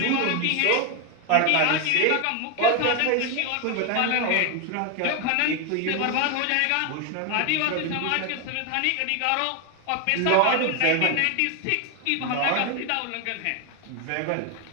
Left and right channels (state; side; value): different; both; correlation 0.01